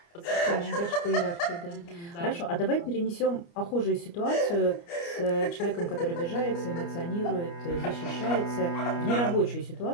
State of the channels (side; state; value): right; late; 29 ms